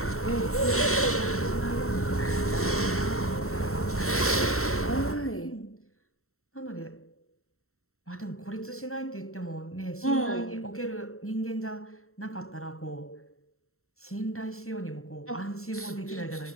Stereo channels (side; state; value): right; late; 0.63 ms